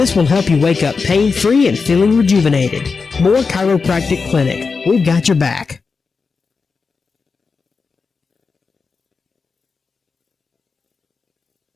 will help you wake up pain-free and feeling rejuvenated. Moore Chiropractic Clinic. We've got your back.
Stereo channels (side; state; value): right; quieter; 4.8 dB